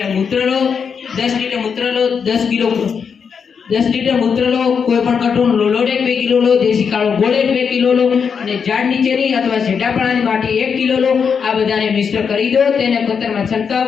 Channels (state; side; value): quieter; right; 6.4 dB